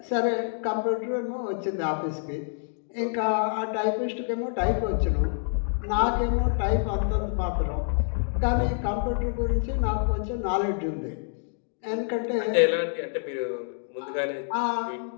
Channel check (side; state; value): right; silent; digital silence